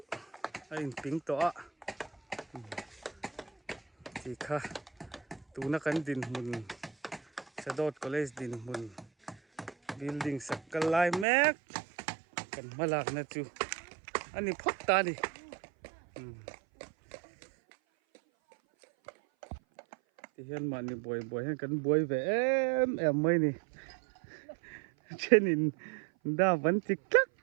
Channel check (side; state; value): left; drops out; at 11.2 s